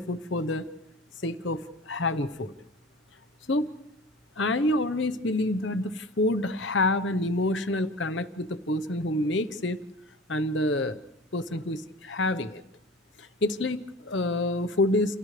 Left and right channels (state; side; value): normal; both; correlation 0.38